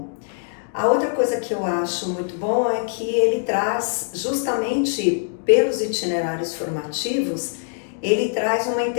A outra coisa que eu acho muito bom é que ele traz, justamente pelos itinerários formativos, ele traz uma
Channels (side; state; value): right; silent; digital silence